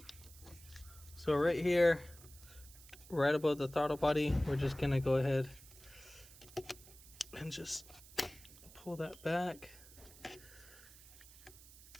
So right here, right above the throttle body, we're just gonna go ahead and just pull that back.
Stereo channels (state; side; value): noise; right; hiss, 20 dB below the sound